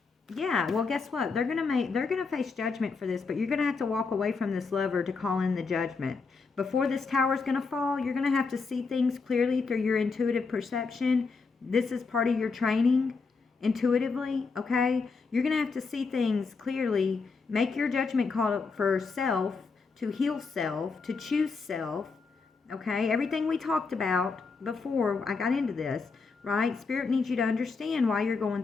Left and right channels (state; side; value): quieter; right; 4.6 dB